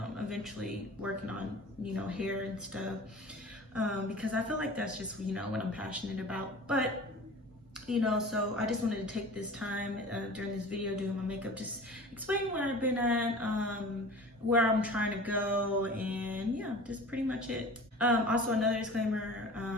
eventually working on, you know, hair and stuff, because I feel like that's just, you know, what I'm passionate about. But, you know, so I just wanted to take this time during this video doing my makeup, just explaining where I've been at, where I'm trying to go, and yeah, just pretty much it. Also, another disclaimer,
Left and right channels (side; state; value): both; normal; correlation 0.40